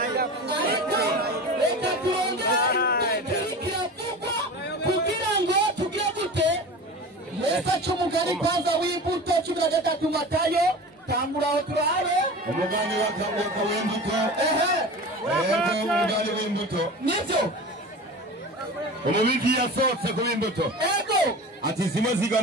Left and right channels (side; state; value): both; normal; correlation 0.34